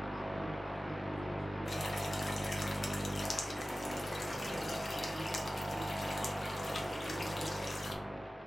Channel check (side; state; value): both; normal; correlation 0.96